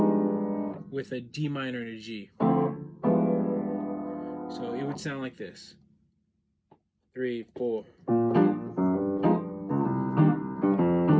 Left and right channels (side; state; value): both; identical; correlation 1.00